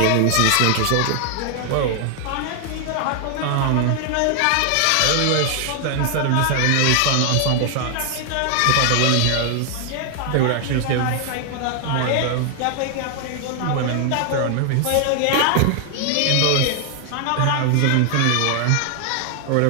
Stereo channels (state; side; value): different; both; correlation 0.00